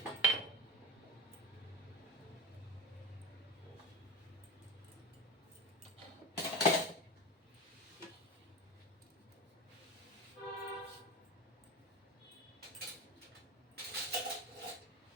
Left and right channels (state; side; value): normal; both; correlation 0.26